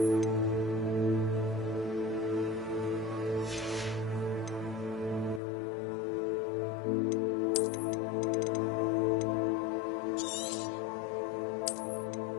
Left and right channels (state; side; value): drops out; right; at 5.4 s